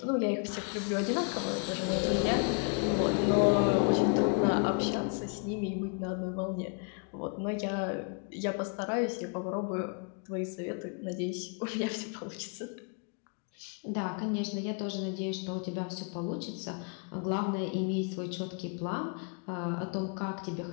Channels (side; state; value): right; quieter; 37.6 dB